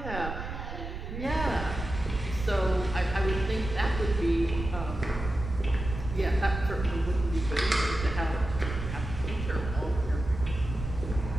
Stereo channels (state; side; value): noise; right; rumble, 7 dB below the sound